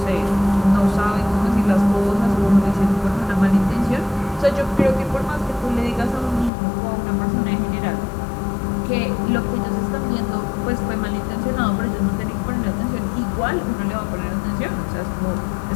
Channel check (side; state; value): right; drops out; at 6.5 s